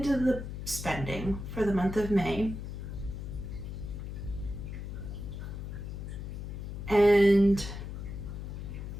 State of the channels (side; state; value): left; noise; hum, 7 dB below the sound